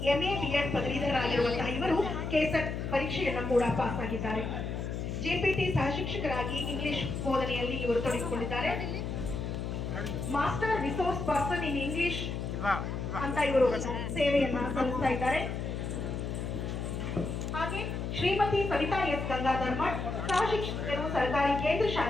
ಎಂಎ ಬಿಎಡ್ ಪದವೀಧರರಾಗಿರುವಂತಹ ಇವರು ಕೆಸೆಟ್ ಪರೀಕ್ಷೆಯನ್ನ ಕೂಡ ಪಾಸ್ ಆಗಿದ್ದಾರೆ. ಜೆಪಿಟಿ ಸಹ ಶಿಕ್ಷಕರಾಗಿ ಇಂಗ್ಲಿಷ್ ಬೋಧನೆಯಲ್ಲಿ ಇವರು ತೊಡಗಿಕೊಂಡಿದ್ದಾರೆ. Master resource person in English ಅಂತ ಇವರು ಸೇವೆಯನ್ನ ಸಲ್ಲಿಸ್ತಾ ಇದ್ದಾರೆ. ಹಾಗೆ ಶ್ರೀಮತಿ ಸವಿತಾ ಎಸ್ ಗಂಗಾಧರ್ ಮಠ್ ಸಹ ಶಿಕ್ಷಕರು ಸರ್ಕಾರಿ ಕೇಂದ್ರ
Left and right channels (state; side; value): noise; left; hum, 4 dB below the sound